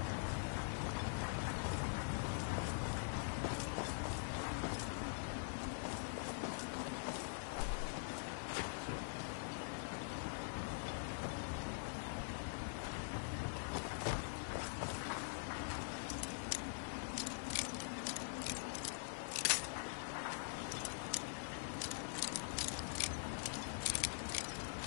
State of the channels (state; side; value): silent; right; digital silence